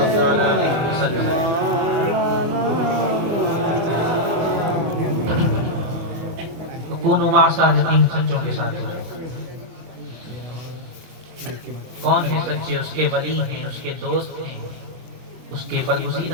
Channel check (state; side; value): late; left; 24 ms